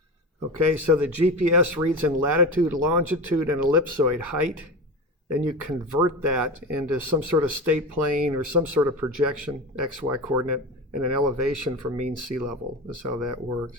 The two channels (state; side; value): normal; both; correlation 0.27